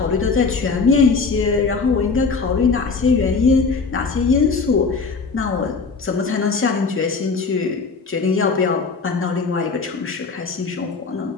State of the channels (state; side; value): quieter; right; 4.6 dB